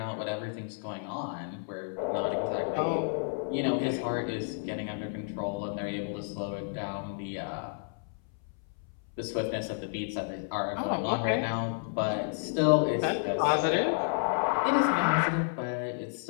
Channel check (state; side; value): silent; right; 57 dB below the other